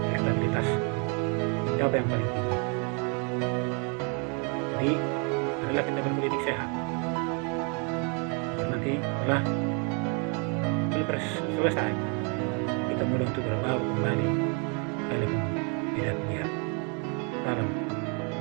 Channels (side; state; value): left; quieter; 36.5 dB